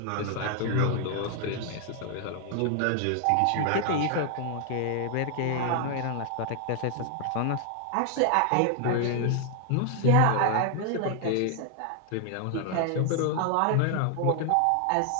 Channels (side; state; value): both; different; correlation 0.00